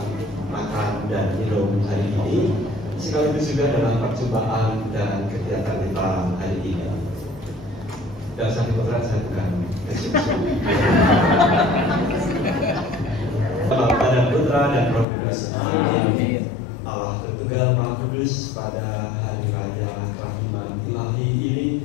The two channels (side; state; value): right; drops out; at 15.1 s